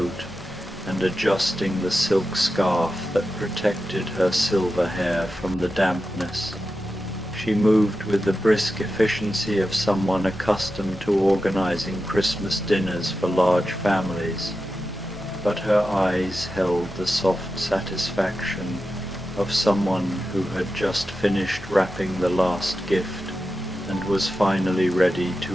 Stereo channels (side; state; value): both; normal; correlation 0.91